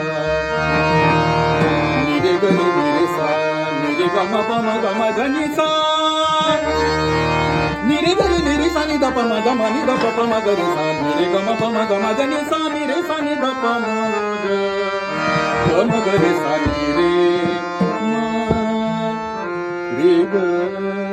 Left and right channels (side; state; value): both; identical; correlation 1.00